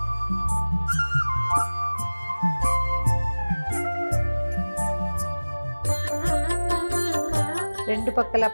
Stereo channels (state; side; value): inverted; both; correlation -1.00